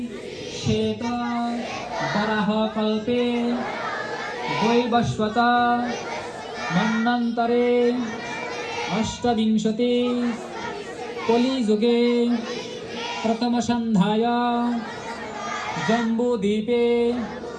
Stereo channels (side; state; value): both; identical; correlation 1.00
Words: শ্বেত বরাহ কল্পে বৈবস্বত মন্বন্তরে অষ্টবিংশতি কলিযুগে প্রথম সন্ধ্যায় জম্বুদ্বীপে